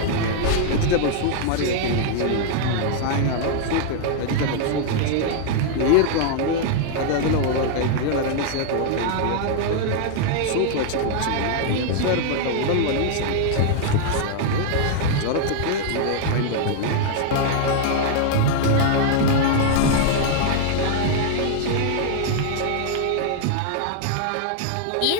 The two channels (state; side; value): different; both; correlation 0.00